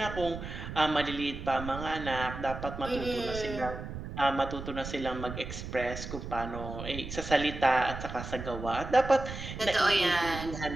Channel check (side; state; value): right; noise; rumble, 8 dB below the sound